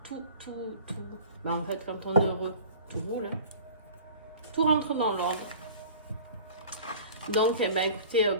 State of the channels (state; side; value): inverted; both; correlation -0.44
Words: tout. En fait, quand on est heureux, tout roule, hein. Tout rentre dans l'ordre. Donc, écoutez,